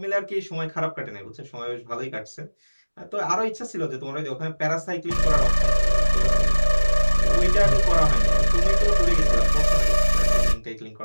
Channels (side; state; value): both; inverted; correlation -1.00